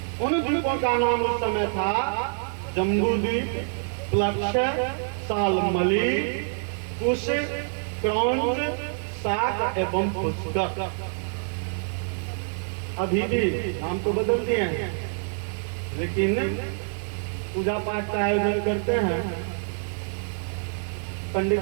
उन द्वीपों का नाम उस समय था जम्बू द्वीप, प्लक्ष, सालमली, कुश, क्रौंच, साक एवं पुष्कर। अभी भी नाम तो बदल दिए हैं, लेकिन पूजा पाठ का आयोजन करते हैं, पंडित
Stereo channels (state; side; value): silent; left; 61 dB below the other